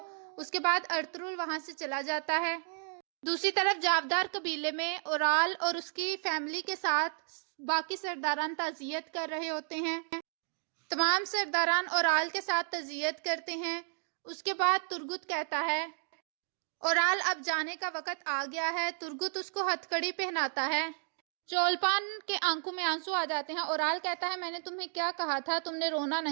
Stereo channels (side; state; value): left; silent; 56 dB below the other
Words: اس کے بعد ارطغرل وہاں سے چلا جاتا ہے۔ دوسری طرف جاودار قبیلے میں اورال اور اس کی فیملی کے ساتھ باقی سرداران تعزیت کر رہے ہوتے ہیں۔ تمام سرداران اورال کے ساتھ تعزیت کرتے ہیں۔ اس کے بعد ترگت کہتا ہے اورال اب جانے کا وقت آ گیا ہے۔ ترگت اس کو ہتھ کڑی پہناتا ہے۔ چولپان کے آنکھوں میں آنسو آ جاتے ہیں۔ اورال کہتا ہے میں نے تمہیں کیا کہا تھا، تم نے رونا